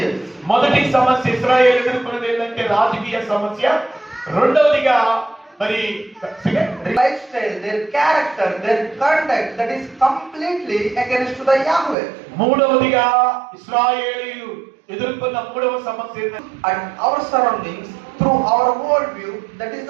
మొదటి సమస్య ఇశ్రాయేలు ఎదుర్కొన్నది ఏంటంటే రాజకీయ సమస్య, రెండవదిగా మరి lifestyle, their character, their conduct that is completely against the Yahweh. మూడవదిగా ఇశ్రాయేలీయులు ఎదుర్కొన్న మూడవ సమస్య And our surroundings, through our worldview, that is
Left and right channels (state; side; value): drops out; left; at 12.0 s